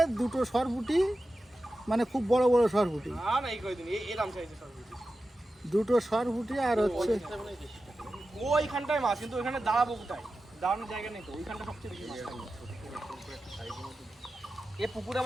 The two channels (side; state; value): both; normal; correlation 0.93